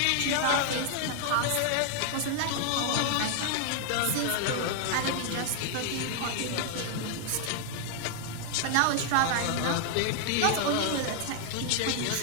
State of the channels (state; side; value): different; both; correlation 0.00